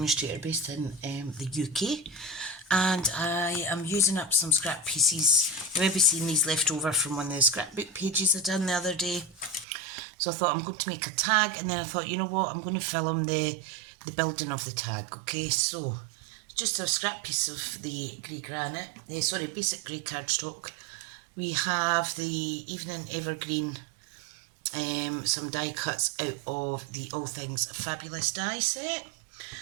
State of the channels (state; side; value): drops out; left; at 9.7 s